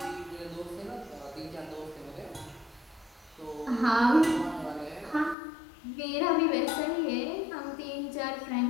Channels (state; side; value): drops out; right; at 5.4 s